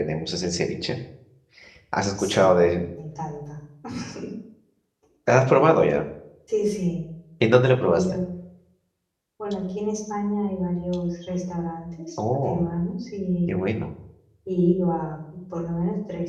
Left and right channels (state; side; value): identical; both; correlation 1.00